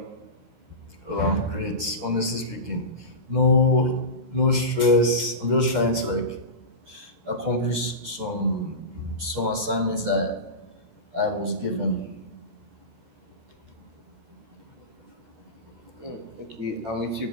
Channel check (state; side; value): late; left; 13 ms